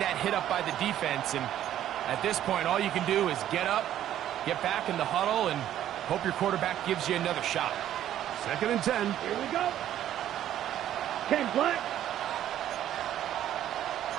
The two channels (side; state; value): left; quieter; 11.6 dB